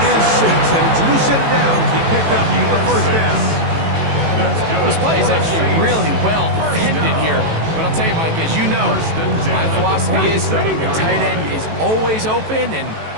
is 6, and it's a new set of downs. He picked up the first down. This play is actually really well defended here. But I'll tell you, Mike, as you know, my philosophy is the tight end is always open, and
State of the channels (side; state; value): left; late; 18 ms